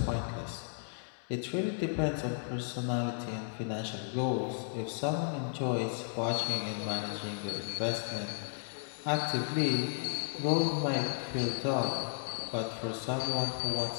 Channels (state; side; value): silent; right; digital silence